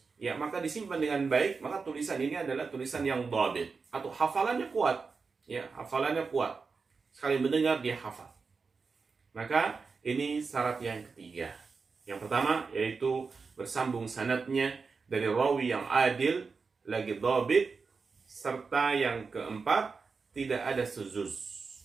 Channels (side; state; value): left; quieter; 4.8 dB